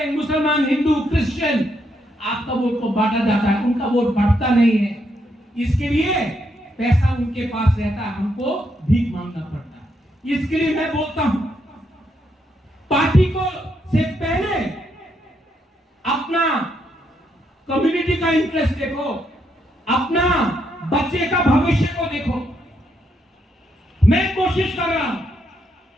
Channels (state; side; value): normal; both; correlation 0.77